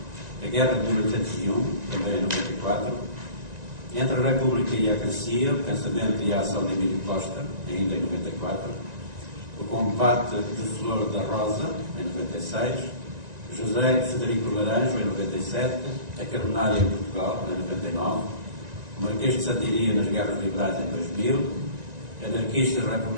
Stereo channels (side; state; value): left; late; 1.9 ms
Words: A Guerra de 1801, também em 94, Entre a República e a Crescia, O Pensamento e a Ação de Emílio Costa, ainda em 94, O Combate de Flor da Rosa, em 96, José Federico Laranjo, em 97, A Carbonária em Portugal, em 99, O Marquês de Santiria nas Guerras Liberais, em 2000, Anarquistas,